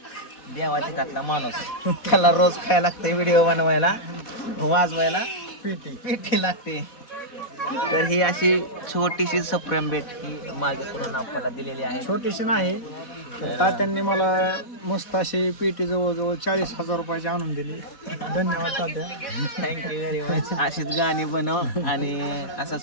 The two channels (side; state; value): right; late; 4.1 ms